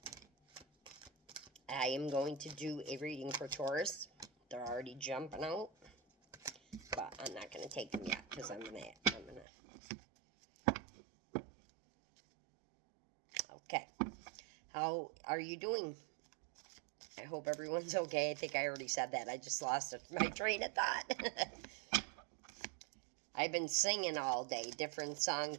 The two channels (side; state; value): left; drops out; at 9.5 s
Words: I am going to do a reading for Taurus. They're already jumping out, but I'm not going to take them yet because I'm gonna. Okay. How are you doing? I hope everyone's okay. I think I already said that. I just lost my train of thought. I've been singing all day, different